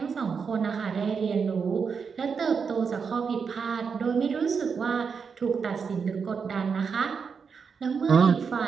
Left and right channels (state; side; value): quieter; left; 5.9 dB